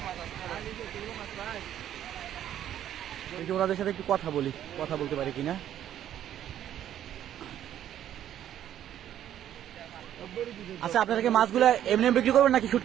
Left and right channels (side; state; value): left; quieter; 11.1 dB